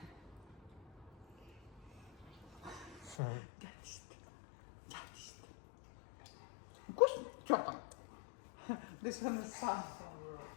Вкусно? Что там? This one is sunflower.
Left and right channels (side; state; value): right; drops out; at 3.2 s